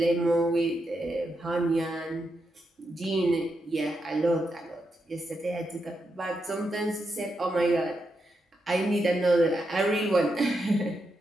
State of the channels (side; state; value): both; normal; correlation 0.84